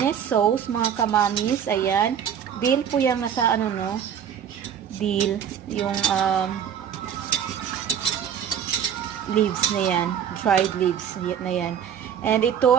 sauce, mga kamamis. Ayan. Dill po yung nasa ano, no? Dill. Yung leaves na yan. Dried leaves na yan. And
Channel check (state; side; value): quieter; left; 8.7 dB